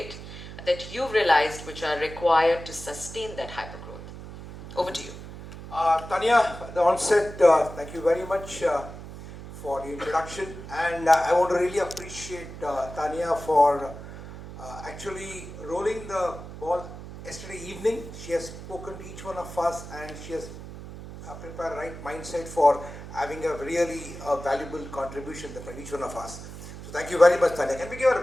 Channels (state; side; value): noise; right; hum, 12 dB below the sound